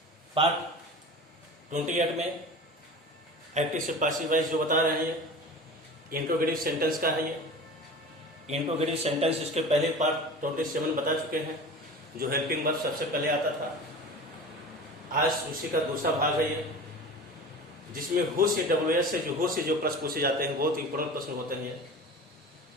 पार्ट 28 में एक्टिव से पासिव वाइज जो बता रहे हैं, इंट्रोगेटिव सेंटेंस का है। ये इंट्रोगेटिव सेंटेंस इसके पहले पार्ट 27 बता चुके हैं, जो हेल्पिंग वर्ब सबसे पहले आता था। आज उसी का दूसरा भाग है ये, जिसमें हु से WS से जो प्रश्न पूछे जाते हैं, बहुत इंपॉर्टेंट प्रश्न होते हैं।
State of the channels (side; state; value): both; normal; correlation 0.35